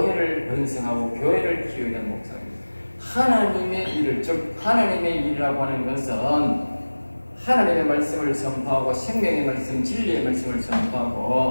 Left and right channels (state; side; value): inverted; both; correlation -1.00